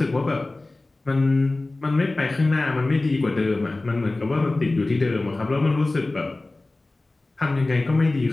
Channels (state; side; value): quieter; right; 3.0 dB